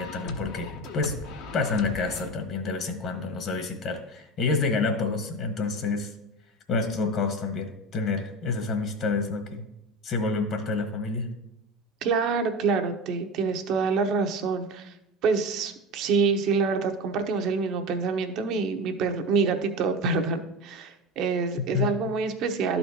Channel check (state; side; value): normal; both; correlation 0.25